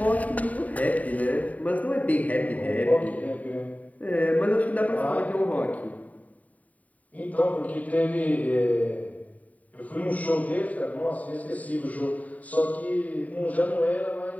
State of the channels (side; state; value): right; late; 0.071 ms